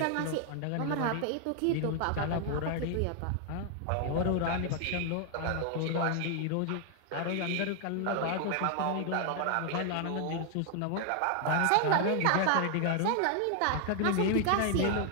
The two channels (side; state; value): both; different; correlation 0.00